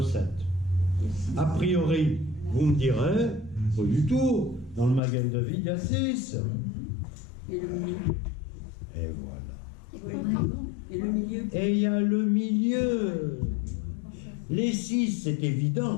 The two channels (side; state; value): right; drops out; at 5.0 s